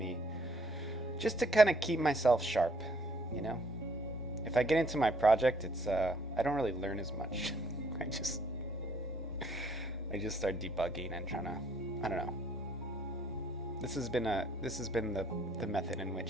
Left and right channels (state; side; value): normal; both; correlation 0.65